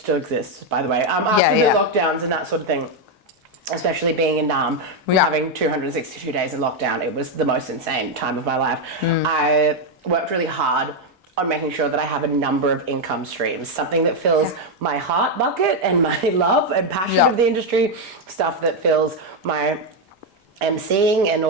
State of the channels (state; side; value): normal; both; correlation 0.03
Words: exists, by the way. After the lockdowns and that sort of thing, especially being in Nam, having 262 days in lockdown, it was the most insane time of my life. I worked really hard on making sure that I have a number of income streams, something that fills my heart bucket and my love and passion of the industry, stuff that fills my emceeing and